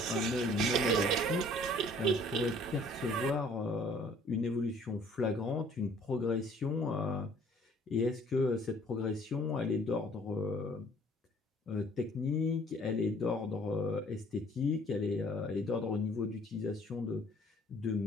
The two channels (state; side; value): normal; both; correlation 0.56